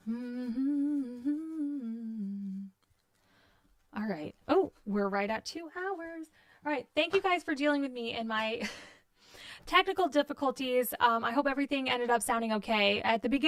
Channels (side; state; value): both; identical; correlation 1.00